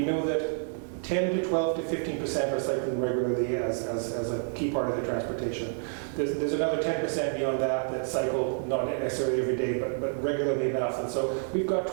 know that 10 to 12 to 15% are cycling regularly as a key part of their transportation. There's another 10% beyond that cycle not necessarily every day, but regularly enough. And so we've got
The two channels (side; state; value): left; silent; digital silence